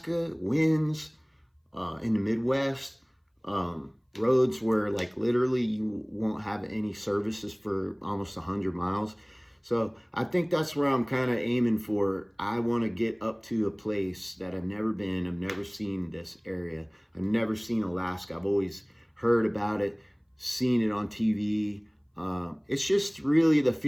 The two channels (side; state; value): both; identical; correlation 1.00